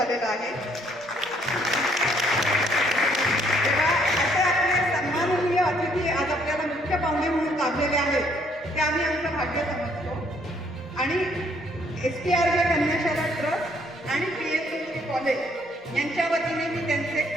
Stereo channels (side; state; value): both; normal; correlation 0.66